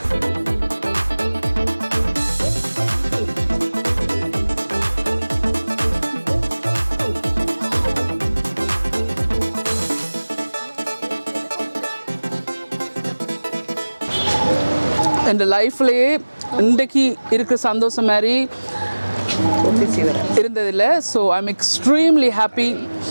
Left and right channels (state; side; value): inverted; both; correlation -1.00